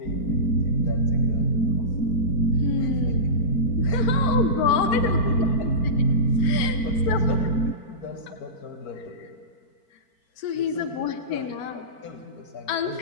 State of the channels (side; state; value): right; late; 4.5 ms